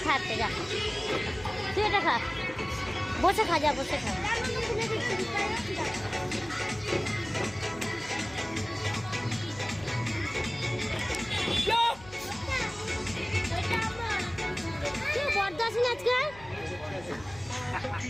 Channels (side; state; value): left; noise; hum, 20 dB below the sound